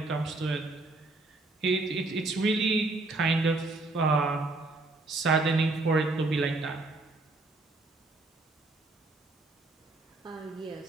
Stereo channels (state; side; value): quieter; left; 3.2 dB